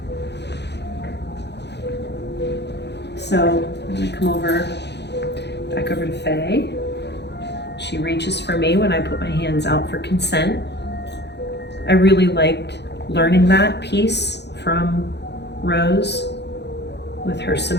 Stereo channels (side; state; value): right; late; 0.50 ms